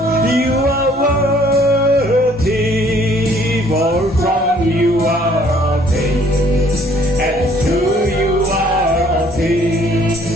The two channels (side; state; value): both; normal; correlation 0.60